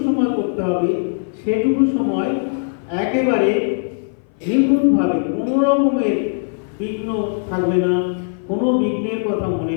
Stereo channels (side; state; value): right; silent; 58 dB below the other